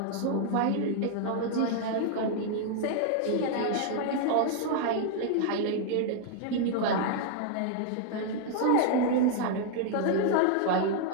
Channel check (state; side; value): different; both; correlation 0.00